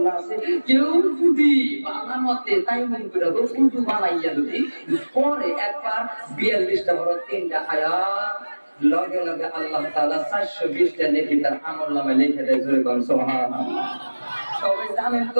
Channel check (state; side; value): inverted; both; correlation -1.00